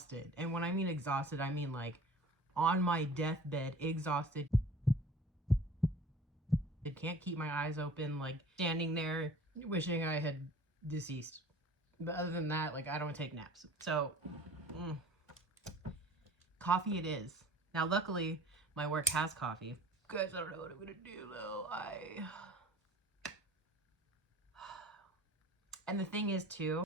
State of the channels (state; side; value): normal; both; correlation 0.45